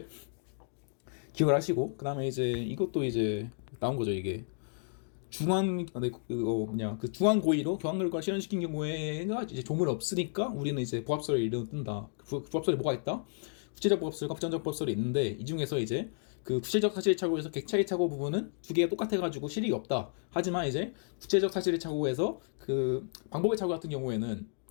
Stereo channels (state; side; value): silent; right; digital silence